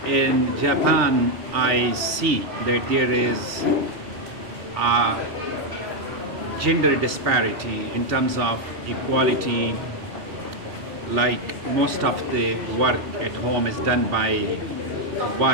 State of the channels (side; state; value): left; late; 3.4 ms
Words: in Japan I see that there is a gender disparity in terms of equality. Like most of the work at home is done by